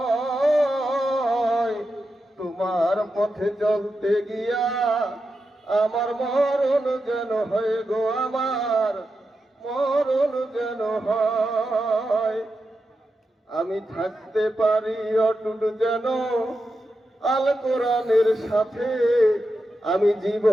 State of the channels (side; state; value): both; normal; correlation 0.89